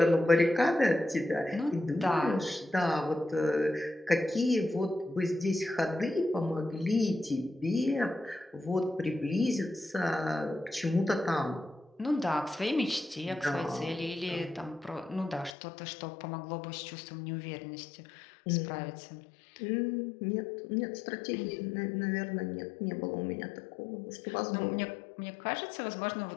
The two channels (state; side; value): drops out; right; at 15.6 s